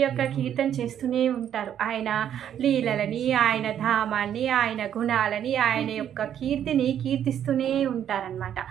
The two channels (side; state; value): left; quieter; 9.8 dB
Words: యొక్క కీర్తన చేస్తూనే ఉంటారు. ఆయన లీలలని, ఆయన ధామాన్ని, ఆయన గుణాలని, ఆయన యొక్క కీర్తిని కీర్తిస్తూనే ఉంటారనమాట.